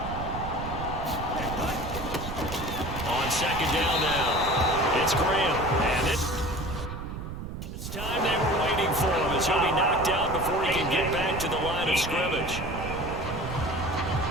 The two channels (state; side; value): noise; right; rumble, 8 dB below the sound